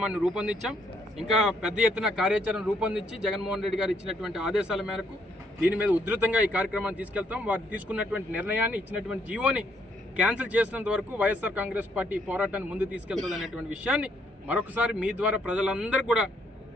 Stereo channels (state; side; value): normal; both; correlation 0.71